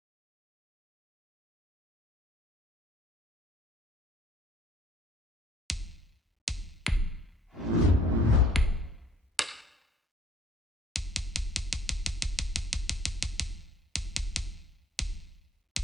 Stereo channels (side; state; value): both; normal; correlation 0.58